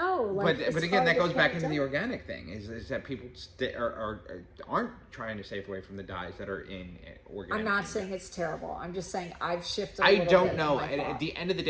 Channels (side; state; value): both; identical; correlation 1.00